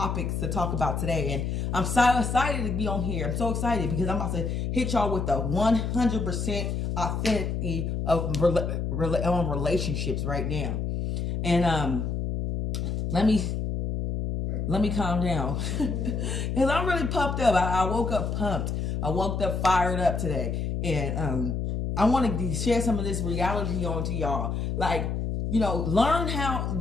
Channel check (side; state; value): left; noise; hum, 1 dB below the sound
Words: to talk about today, and I'm so excited to be on here. I'm so excited because I'm about to hit y'all with the 100% authenticity of relationships right now. And let me calm down because I'm really pumped up. I woke up pumped. I woke up fired up today, and I want to share some of this reality onto y'all.